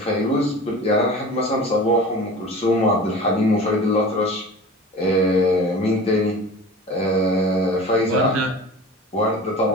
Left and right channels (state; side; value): normal; both; correlation 0.37